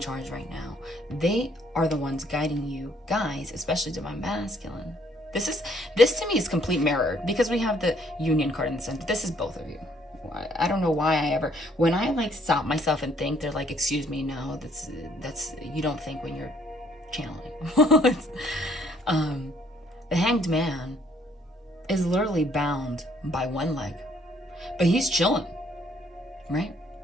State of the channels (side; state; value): both; normal; correlation 0.65